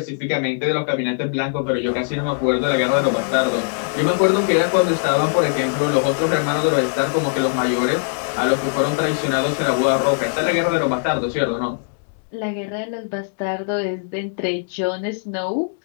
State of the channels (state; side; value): silent; right; 65 dB below the other